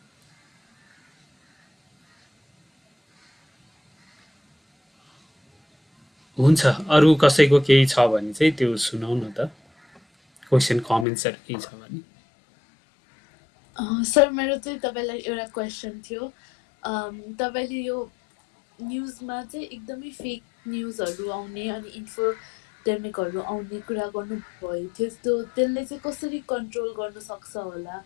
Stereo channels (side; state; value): right; drops out; at 11.1 s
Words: हुन्छ अरू कसैको केही छ भने चाहिँ त्यो सुनाउ न त क्वेसन कमेन्ट्सहरू केही छ भने सर मेरो चाहिँ तपाईँलाई एउटा क्वेसन थियो तपाईँले यो न्युजमा चाहिँ एकदमै फेक न्युजहरू आउने अनि इन्फोडेमिकहरू आउने कुरा गर्नुभयो थियो त्यसले चाहिँ कसरी कन्ट्रोल गर्न सक्छ होला